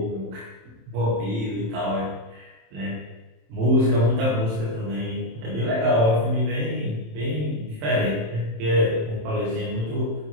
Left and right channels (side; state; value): left; late; 27 ms